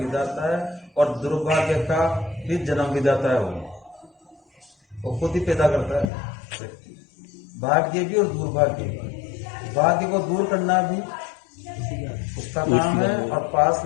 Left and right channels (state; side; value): drops out; right; at 6.1 s